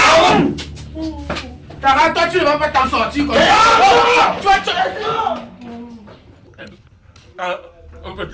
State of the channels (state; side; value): identical; both; correlation 1.00